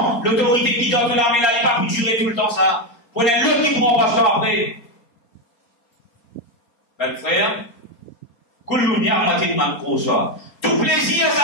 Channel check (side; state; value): right; late; 4.3 ms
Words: l'autorité qui donne la main là, il n'a pas pu durer tout le temps ça. Prenez l'autre qui prend pasteur après. Ben frère, tout plaisir,